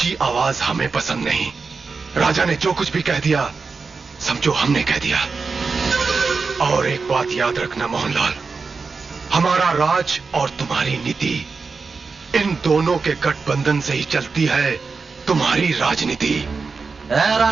आवाज हमें पसंद नहीं। राजा ने जो कुछ भी कह दिया समझो हमने कह दिया। और एक बात याद रखना मोहनलाल, हमारा राज और तुम्हारी नीति, इन दोनों के गठबंधन से ही चलती है तुम्हारी राजनीति।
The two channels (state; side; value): quieter; left; 4.6 dB